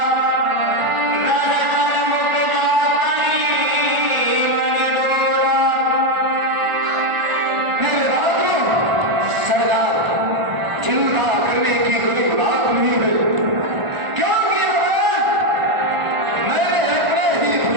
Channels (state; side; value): late; left; 1.4 ms